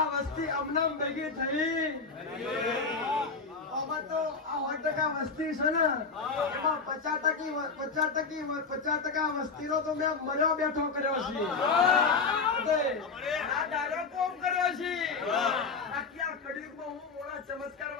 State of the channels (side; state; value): right; quieter; 4.7 dB